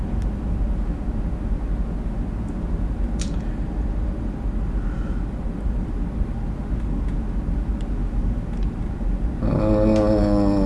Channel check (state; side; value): identical; both; correlation 1.00